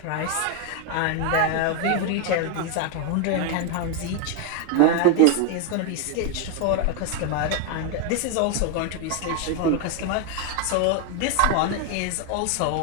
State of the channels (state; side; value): different; both; correlation 0.01